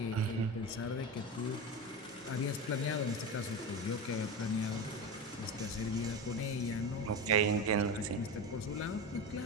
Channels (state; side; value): normal; both; correlation 0.22